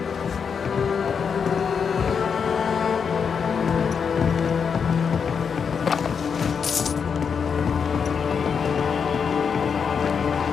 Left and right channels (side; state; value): right; quieter; 6.4 dB